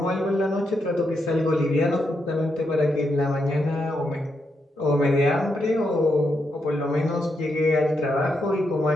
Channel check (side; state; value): both; normal; correlation 0.82